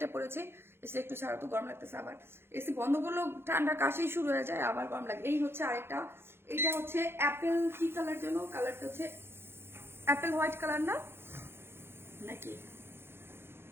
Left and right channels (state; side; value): late; left; 0.11 ms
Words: পরেছি, এসে একটু ছাড়া তো গরম লাগতেছে, আবার এসি বন্ধ করলেও ঠান্ডা কাশি শুরু হয়ে যায়, আবার গরম লাগে। এই হচ্ছে আরেকটা, এইটা হচ্ছে অ্যাপেল কি কালার যেন, কালারটা হচ্ছে অ্যাপেল হোয়াইট কালার না নাকি